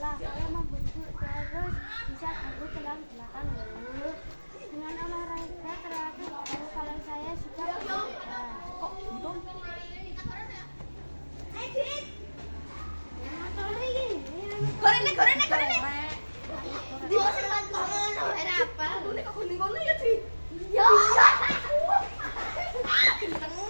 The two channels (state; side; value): inverted; both; correlation -1.00